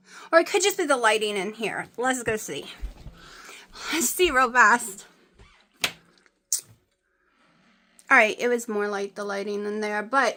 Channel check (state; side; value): identical; both; correlation 1.00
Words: Or it could just be the lighting in here. Let's go see. Let's see real fast. Alright, it was more like the lighting in there.